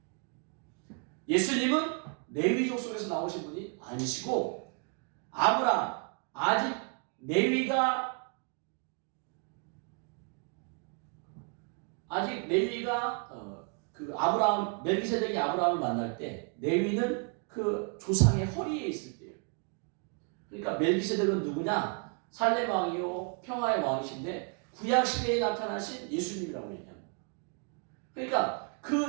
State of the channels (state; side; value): quieter; left; 39.9 dB